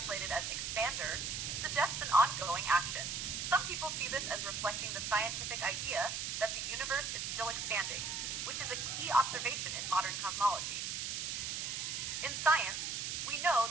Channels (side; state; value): right; noise; hiss, 3 dB below the sound